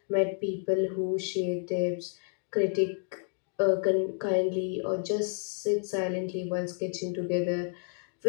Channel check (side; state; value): right; silent; 56 dB below the other